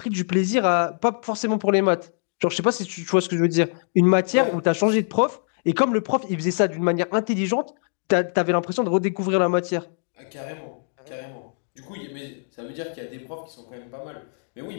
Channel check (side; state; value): right; silent; digital silence